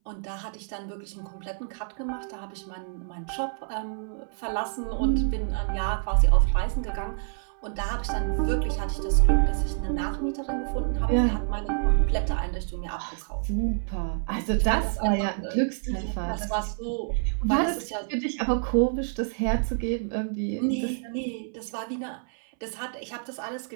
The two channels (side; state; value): left; silent; 60 dB below the other